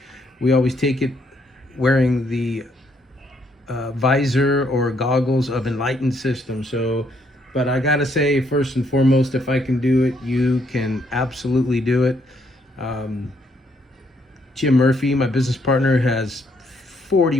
we always take it wearing the visor or goggles of Enlightened System. So, but I gotta say, first and foremost, if I can do it, you can absolutely do it. Jim Murphy, my business partner, has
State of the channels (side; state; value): both; normal; correlation 0.71